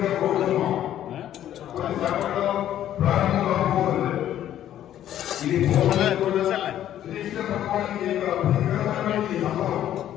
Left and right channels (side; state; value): right; quieter; 11.6 dB